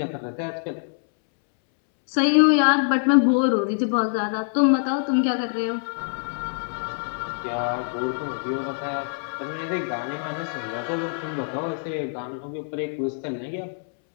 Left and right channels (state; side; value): silent; right; 62 dB below the other